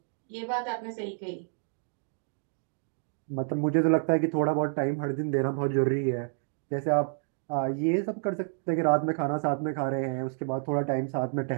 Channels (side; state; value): left; silent; 57 dB below the other